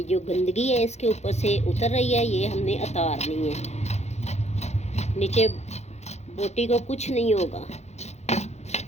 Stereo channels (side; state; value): right; late; 0.32 ms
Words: जो गंदगी है इसके ऊपर से उतर रही है, ये हमने उतारनी है। नीचे बोटी को कुछ नहीं होगा।